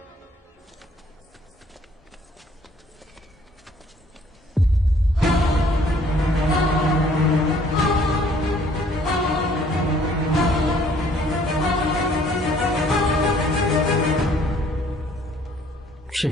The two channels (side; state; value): both; normal; correlation 0.59